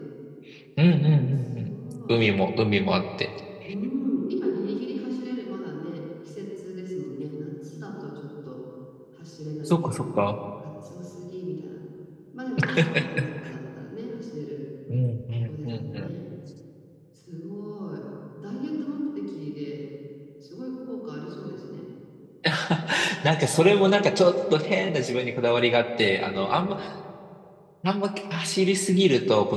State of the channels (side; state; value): both; identical; correlation 1.00